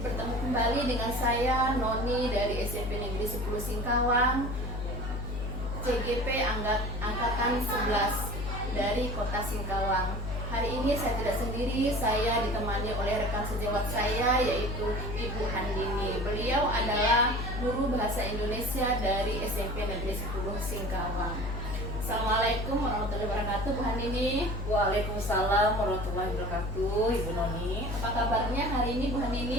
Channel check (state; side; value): noise; left; hum, 4 dB below the sound